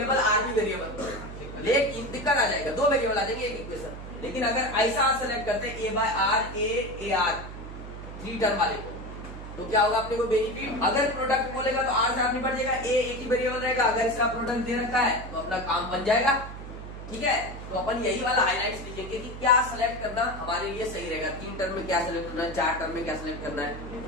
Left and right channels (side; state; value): right; noise; hum, 11 dB below the sound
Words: आर भी वेरिएबल, लेकिन दिक्कत आ जाएगा, 2 वेरिएबल आ जाएंगे एक इक्वेशन। लेकिन अगर ऐसा सेलेक्ट करते हैं a by r, a r 3 term वाले को, तो क्या होगा अपने को बेनिफिट। अगर प्रोडक्ट बोलेगा तो आर से आर निपट जाएगा, ए एक ही वेरिएबल रहेगा। अगर इसका प्रोडक्ट दे रखा है तो अपना काम बन जाएगा, ठीक है। तो अपन यही वाला हाइलाइट्स लिखेंगे कि क्या सेलेक्ट करना हमारे लिए सही रहेगा। 3 टर्म में क्या सेलेक्ट करना है, 4 टर्म में क्या सेलेक्ट करना है।